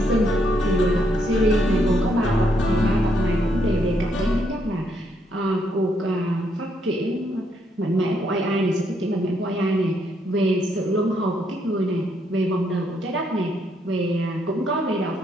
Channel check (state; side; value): normal; both; correlation 0.74